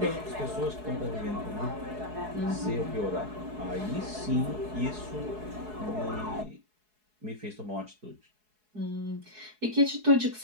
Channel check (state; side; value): late; left; 4.7 ms